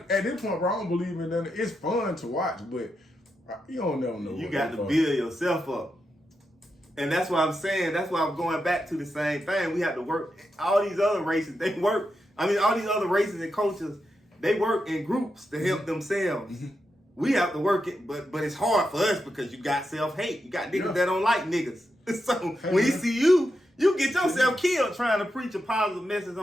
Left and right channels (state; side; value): normal; both; correlation 0.86